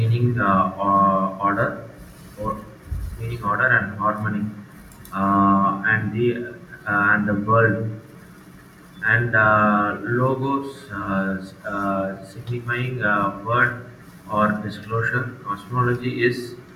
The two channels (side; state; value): both; identical; correlation 1.00